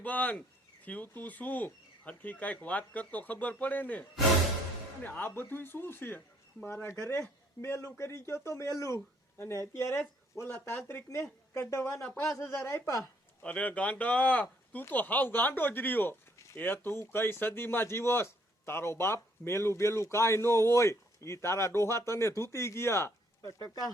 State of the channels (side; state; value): both; normal; correlation 0.67